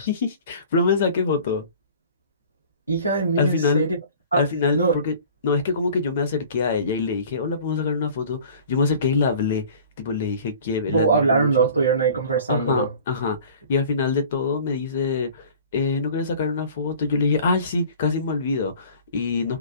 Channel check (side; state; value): both; inverted; correlation -0.46